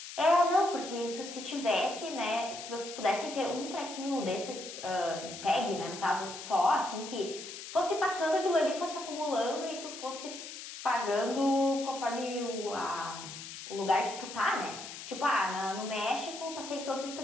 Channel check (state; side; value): noise; left; hiss, 11 dB below the sound